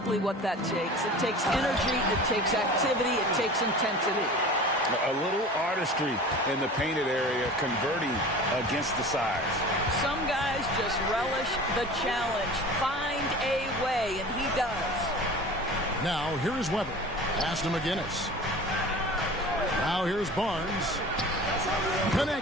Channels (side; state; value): both; normal; correlation 0.39